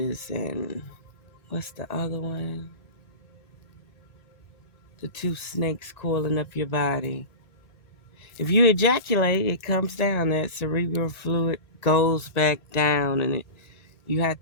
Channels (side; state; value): right; late; 1.6 ms